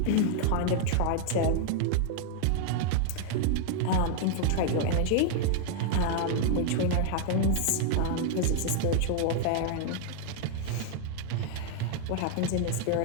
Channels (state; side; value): different; both; correlation 0.00